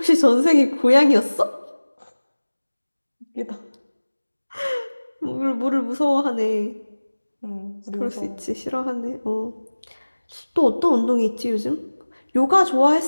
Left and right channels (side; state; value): both; inverted; correlation -1.00